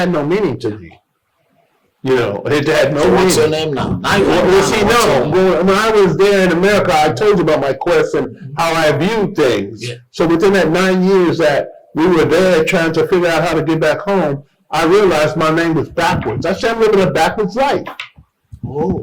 no meaning to me. You know, it had no So what's your meaning. name now? Now you Well, see, what's your no, name? when I was there in America, I told you about my quest and how I viewed things. Yeah. So within that 9 years that we were there trying to figure out how to get back home, I realized my name was backwards. I said, I'm living a backwards life. Oh.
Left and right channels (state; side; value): identical; both; correlation 1.00